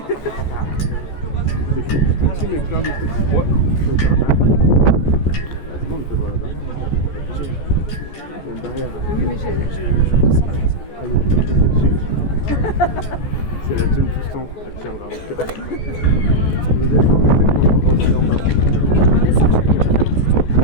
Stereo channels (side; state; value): right; late; 14 ms